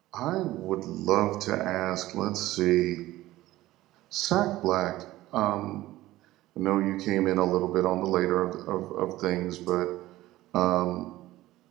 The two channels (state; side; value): quieter; left; 16.5 dB